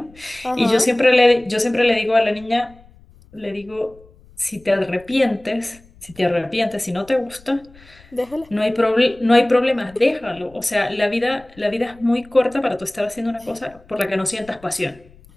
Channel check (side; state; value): left; noise; rumble, 26 dB below the sound